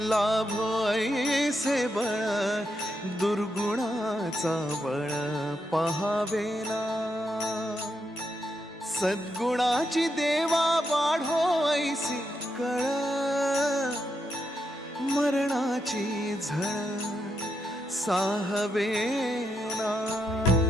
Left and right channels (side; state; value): both; normal; correlation 0.82